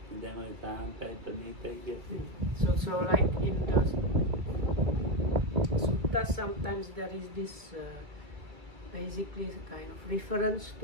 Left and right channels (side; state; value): left; late; 2.2 ms